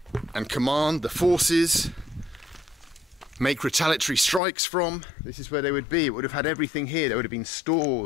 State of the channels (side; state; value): right; drops out; at 4.4 s